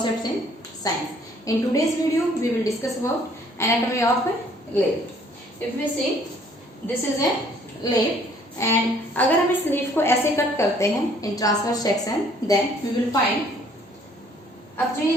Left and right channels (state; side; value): normal; both; correlation 0.60